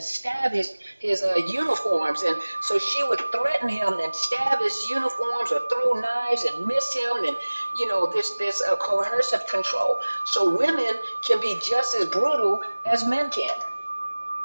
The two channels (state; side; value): inverted; both; correlation -1.00